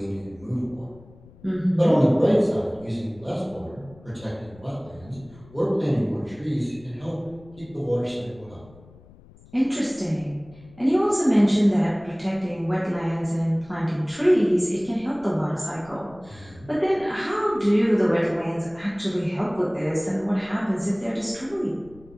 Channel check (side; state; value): left; noise; rumble, 23 dB below the sound